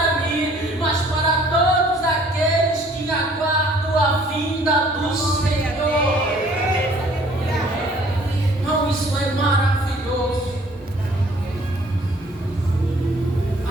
mim, mas para todos aqueles que aguardam a vinda do Senhor. Não, isso é maravilhoso.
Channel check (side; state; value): both; normal; correlation 0.57